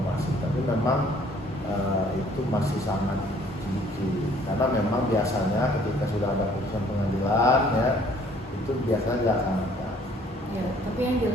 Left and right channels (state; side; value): normal; both; correlation 0.59